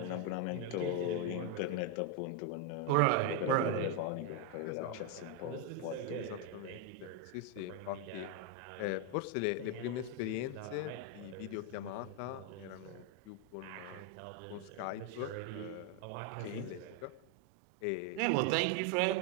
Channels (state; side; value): different; both; correlation 0.01